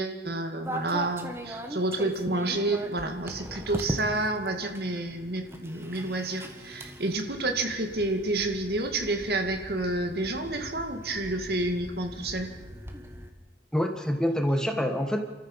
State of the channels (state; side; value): normal; both; correlation 0.45